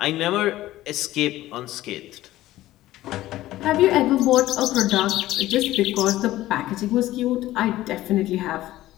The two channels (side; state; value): right; quieter; 15.5 dB